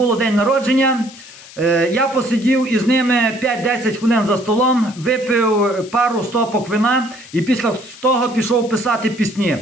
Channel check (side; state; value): left; noise; hiss, 19 dB below the sound